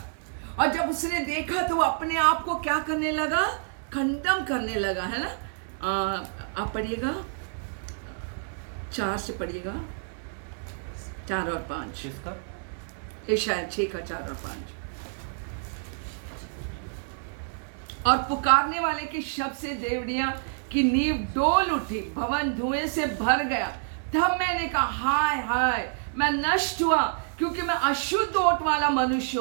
और जब उसने देखा तो वो अपने आप को क्या करने लगा? खंडन करने लगा, है ना? आप पढ़िएगा 4 से पढ़िएगा, 4 और 5, ये शायद 6 का 4 और 5। और पुकारने वाले के शब्द से देवड़ियां की नींव डोल उठी, भवन धुएं से भर गया। तब मैंने कहा हाय हाय, मैं नष्ट हुआ, क्योंकि मैं अशुद्ध ओट वाला मनुष्य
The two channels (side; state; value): left; silent; digital silence